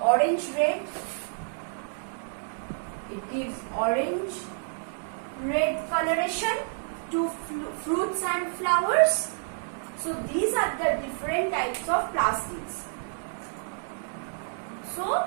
It gives orange-red coloration to fruits and flowers. So these are the different types of plastids. So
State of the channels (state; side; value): silent; left; 59 dB below the other